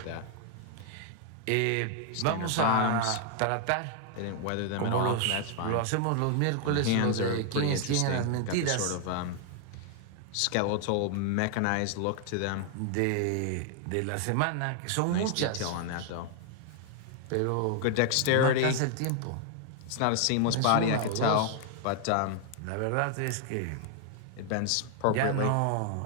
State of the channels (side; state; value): both; different; correlation 0.00